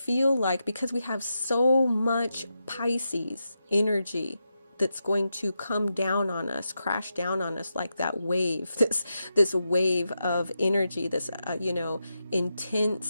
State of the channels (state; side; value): inverted; both; correlation -0.87